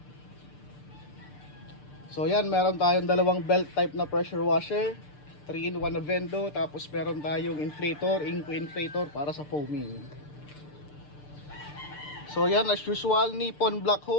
So yan, meron tayong dalawang belt type na pressure washer, 3-in-1 na Vendo, tapos meron tayong inflator, Inco inflator para sa foaming. So yan, as usual, Nippon black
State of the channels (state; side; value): late; right; 6.7 ms